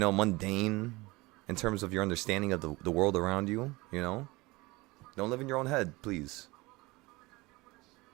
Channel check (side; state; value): left; quieter; 22.6 dB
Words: mundane in terms of your understanding of the world around you, you know? Don't live in your own head, please.